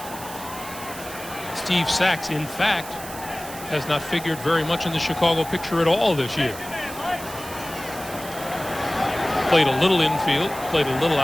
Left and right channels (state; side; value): noise; right; hiss, 13 dB below the sound